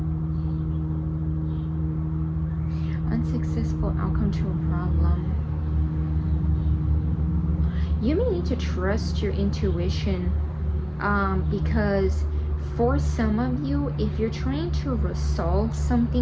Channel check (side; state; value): both; identical; correlation 1.00